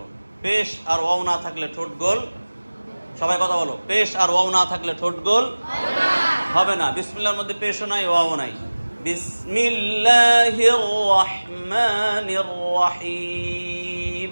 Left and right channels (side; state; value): both; inverted; correlation -1.00